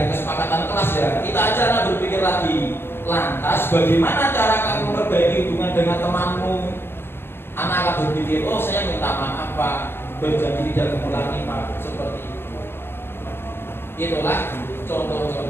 kesepakatan kelas ya. Kita aja lah berpikir lagi. Lantas bagaimana cara kamu memperbaiki hubungan dengan temanmu? Anak akan berpikir, oh saya minta maaf Pak, berjanji tidak mengulangi Pak, seperti itu. Itulah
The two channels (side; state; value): right; late; 0.11 ms